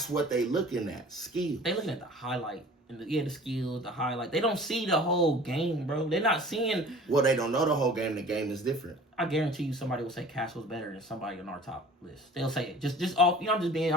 what they looking at. Skills. They looking at the highlight. And the skills, the highlight. They don't see the whole game, bro. They're not seeing. Well, they don't know the whole game. The game is different. I guarantee you, somebody will say Castle's better than somebody on our top list. They'll say it. Just off. You know,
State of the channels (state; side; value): normal; both; correlation 0.45